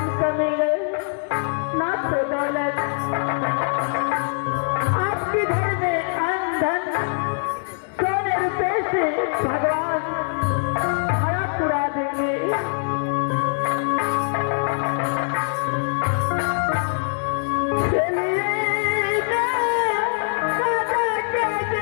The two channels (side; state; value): right; silent; 63 dB below the other